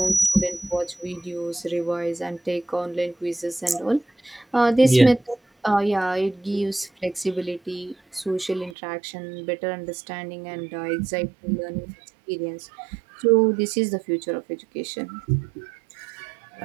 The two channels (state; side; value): drops out; left; at 8.8 s